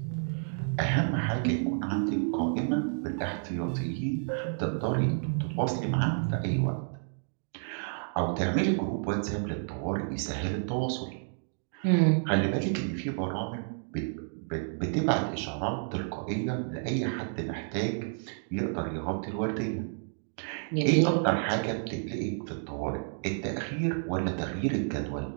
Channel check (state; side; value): silent; left; digital silence